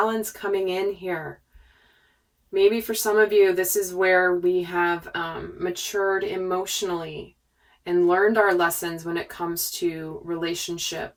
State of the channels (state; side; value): identical; both; correlation 1.00